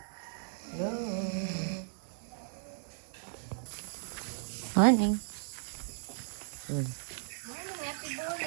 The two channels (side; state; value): left; silent; digital silence